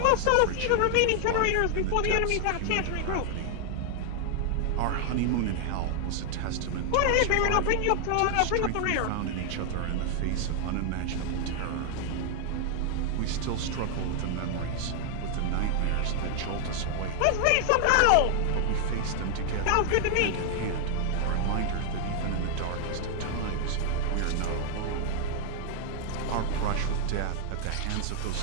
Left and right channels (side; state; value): both; different; correlation 0.00